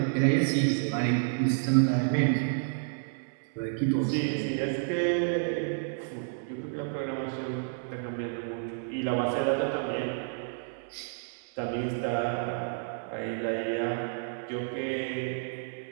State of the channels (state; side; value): silent; left; 58 dB below the other